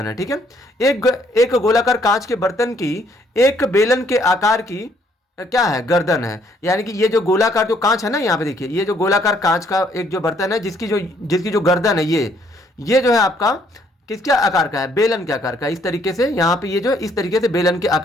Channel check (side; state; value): both; normal; correlation 0.66